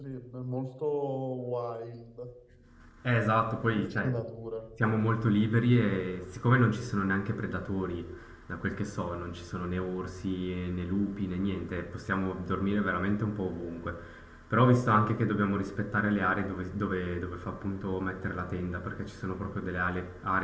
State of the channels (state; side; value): identical; both; correlation 1.00